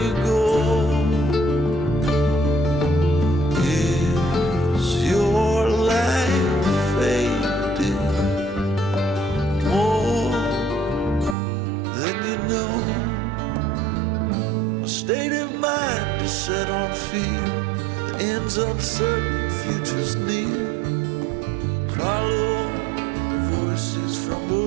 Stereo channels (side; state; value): left; drops out; at 11.4 s